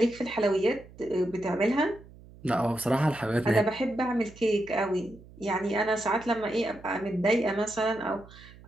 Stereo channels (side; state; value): right; noise; hum, 21 dB below the sound